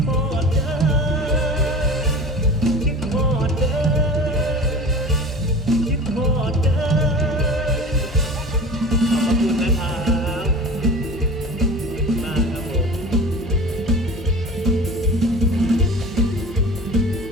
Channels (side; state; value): both; normal; correlation 0.37